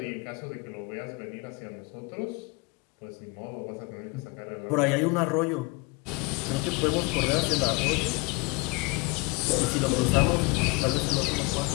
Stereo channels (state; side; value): quieter; right; 27.8 dB